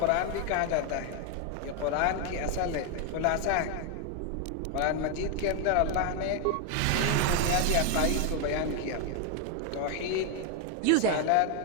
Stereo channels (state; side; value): different; both; correlation 0.01